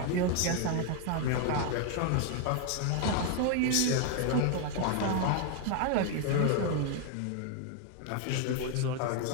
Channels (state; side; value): different; both; correlation 0.00